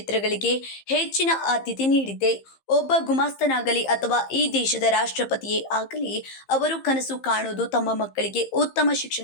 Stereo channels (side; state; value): right; late; 15 ms